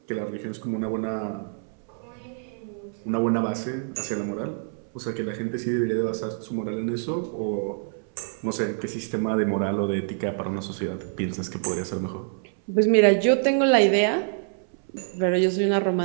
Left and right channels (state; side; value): silent; left; 61 dB below the other